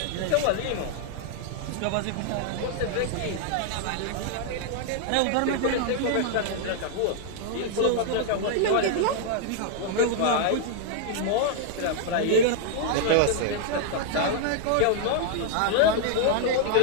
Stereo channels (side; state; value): both; different; correlation -0.01